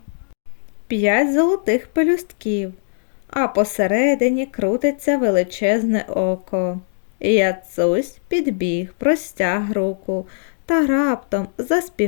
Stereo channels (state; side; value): silent; right; digital silence